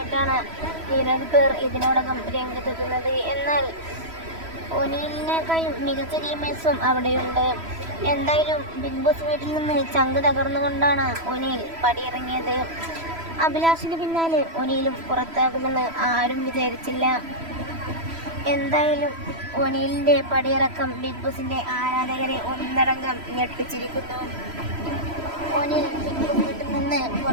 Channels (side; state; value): left; late; 3.0 ms